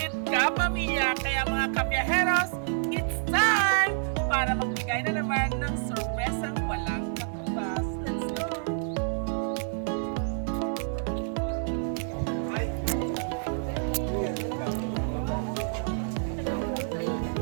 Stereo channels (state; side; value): silent; left; digital silence